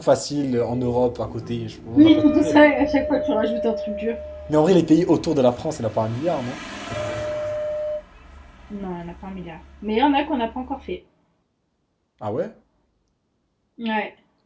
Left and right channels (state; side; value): identical; both; correlation 1.00